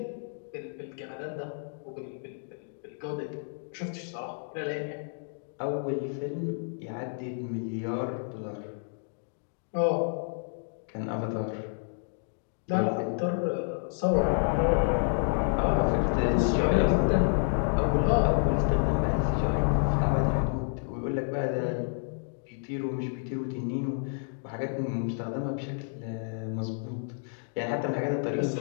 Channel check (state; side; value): silent; right; digital silence